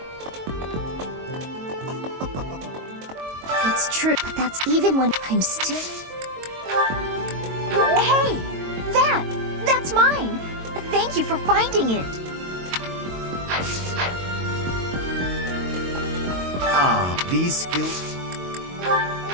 It's true, but that's even when I'm still... Hey! That's mine! Thank you for finding it! Ah, these skills...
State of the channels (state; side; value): late; left; 22 ms